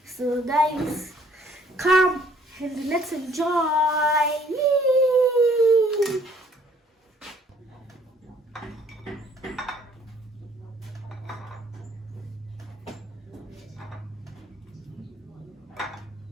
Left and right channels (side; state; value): both; normal; correlation 0.60